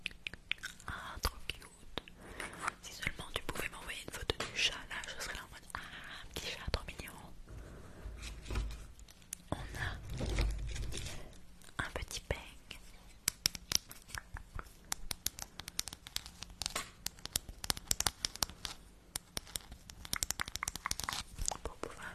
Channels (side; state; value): both; identical; correlation 1.00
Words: Ah, trop cute. Si seulement tu pouvais m'envoyer une photo du chat, là, je serais là en mode ah, un petit chat trop mignon. On a un petit peigne. Pour pouvoir